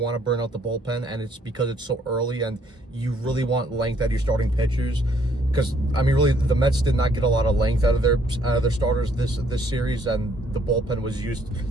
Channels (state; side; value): normal; both; correlation 0.66